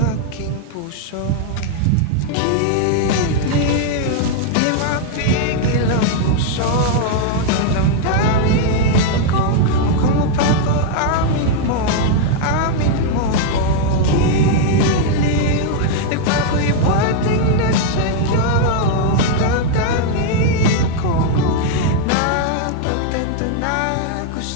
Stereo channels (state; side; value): different; both; correlation 0.00